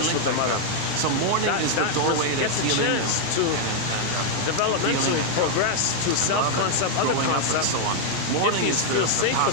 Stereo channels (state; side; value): different; both; correlation 0.00